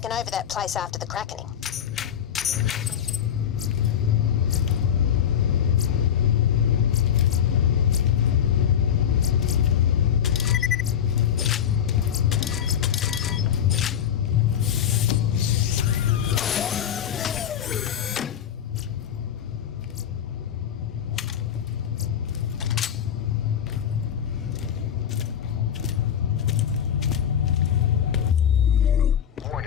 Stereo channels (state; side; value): quieter; right; 9.1 dB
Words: over that place after the crackening.